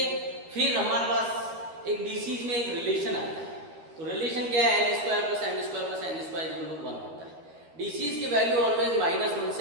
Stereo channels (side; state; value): left; late; 13 ms